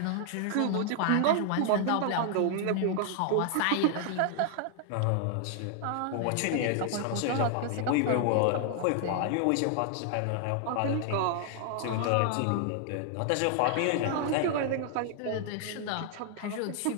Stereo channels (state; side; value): different; both; correlation 0.00